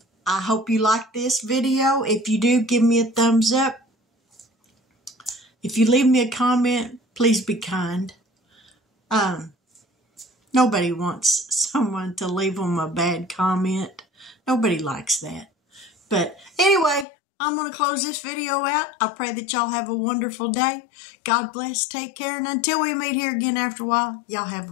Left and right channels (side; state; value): right; drops out; at 17.1 s